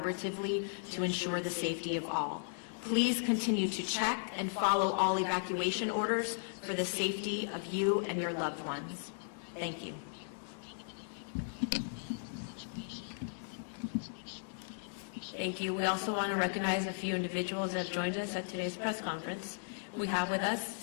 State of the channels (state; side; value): silent; right; digital silence